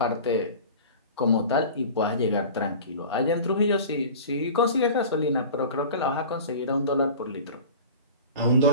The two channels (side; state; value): both; inverted; correlation -0.38